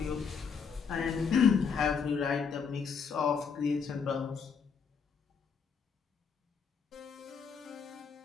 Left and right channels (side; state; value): right; quieter; 6.2 dB